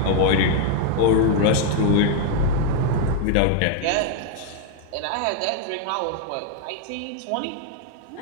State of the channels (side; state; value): both; different; correlation 0.00